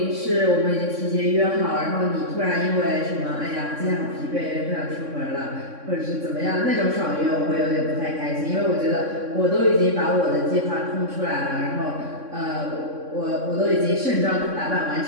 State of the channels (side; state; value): left; late; 3.6 ms